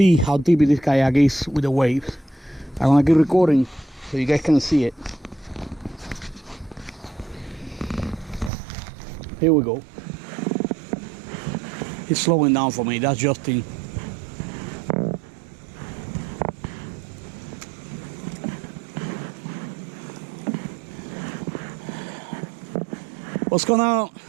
how deep this kayak is with the waves. I'm gonna keep recording so you guys can see it. Here we go. It's slowing down for me. That's Justin. What's going on? How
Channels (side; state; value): left; drops out; at 8.5 s